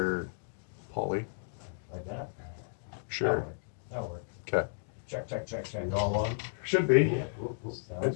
Paulie. Like that? Sure. That'll work. Okay. Check. You all on? Should be. Yeah, cool.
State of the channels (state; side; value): silent; right; digital silence